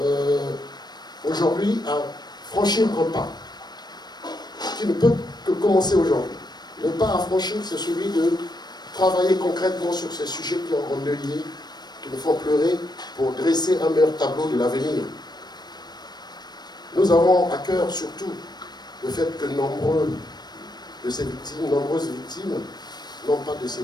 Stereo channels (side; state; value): right; late; 0.20 ms